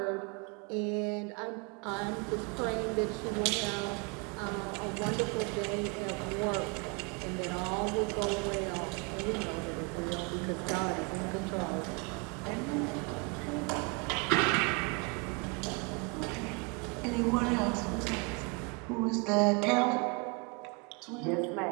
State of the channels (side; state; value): left; quieter; 32.1 dB